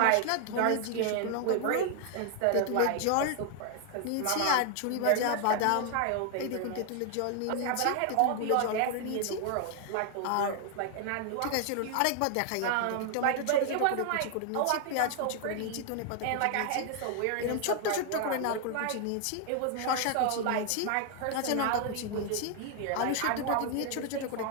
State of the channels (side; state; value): both; different; correlation 0.00